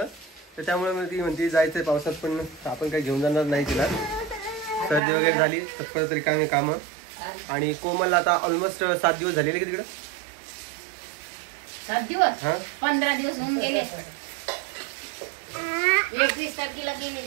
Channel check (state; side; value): drops out; left; at 5.0 s